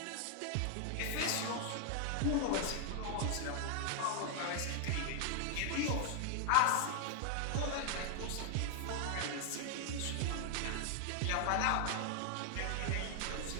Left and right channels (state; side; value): different; both; correlation 0.00